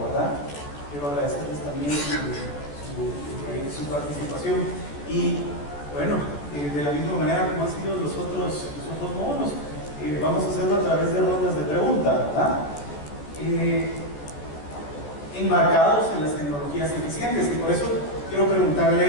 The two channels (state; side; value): late; right; 14 ms